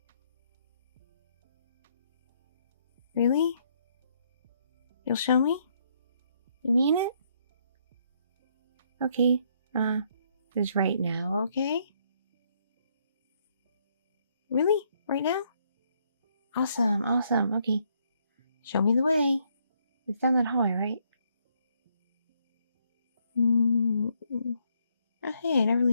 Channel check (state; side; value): inverted; both; correlation -0.71